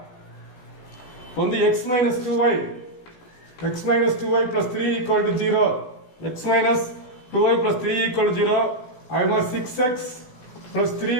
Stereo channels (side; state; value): right; late; 16 ms